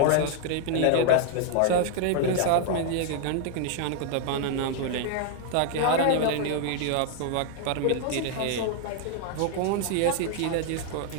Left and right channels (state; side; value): different; both; correlation 0.00